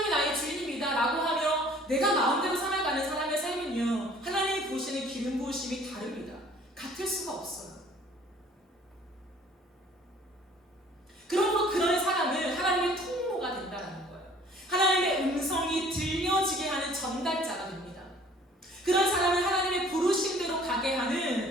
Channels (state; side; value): normal; both; correlation 0.54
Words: 나의 주인입니다 라고 하며 내가 마음대로 살아가는 사람의 삶은요, 하나님이 보시는 기름 부으심이 다릅니다. 같을 수가 없어요. 그러므로 그런 사람은 하나님의 통로가 된다는 거예요. 하나님의 음성이 들려지게 하는 전달자가 됩니다. 그런 사람은 하나님의 부르심대로 가게